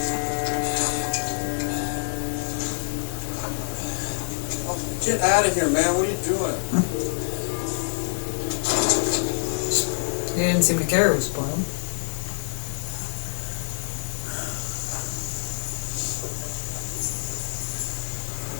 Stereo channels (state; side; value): silent; right; digital silence